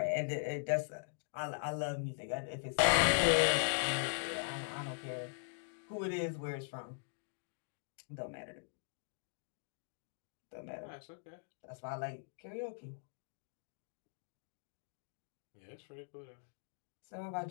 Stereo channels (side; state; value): right; silent; digital silence